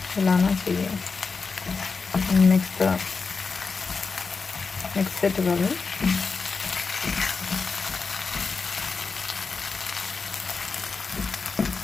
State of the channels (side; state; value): right; quieter; 4.7 dB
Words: हिलाना चाहिए. Mix it well.